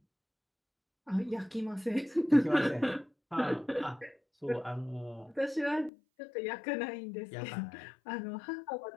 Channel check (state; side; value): drops out; right; at 5.9 s